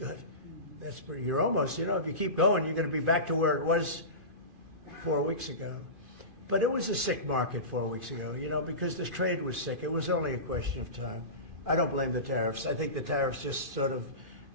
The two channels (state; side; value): late; left; 2.5 ms